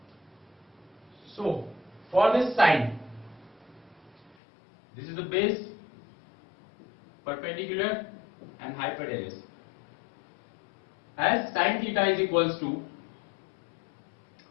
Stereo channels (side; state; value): right; drops out; at 4.4 s